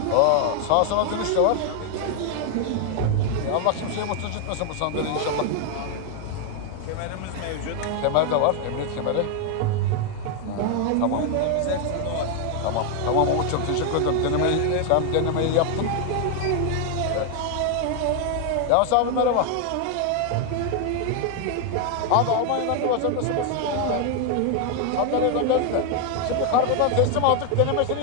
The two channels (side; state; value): both; different; correlation 0.01